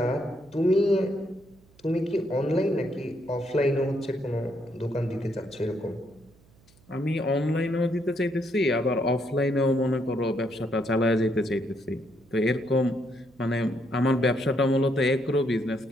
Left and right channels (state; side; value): noise; right; hum, 29 dB below the sound